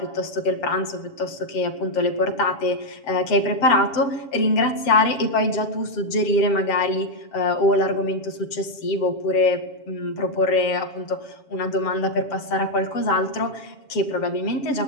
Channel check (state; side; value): late; right; 7.1 ms